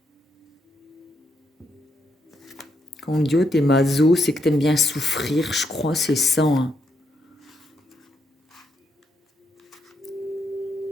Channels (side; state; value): both; normal; correlation 0.78